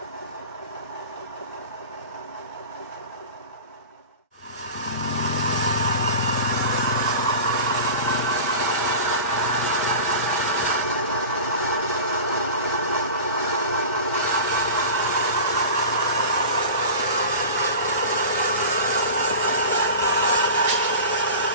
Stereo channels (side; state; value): both; inverted; correlation -0.34